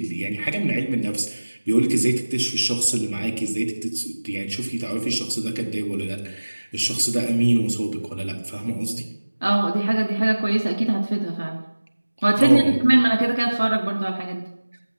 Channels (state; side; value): inverted; both; correlation -1.00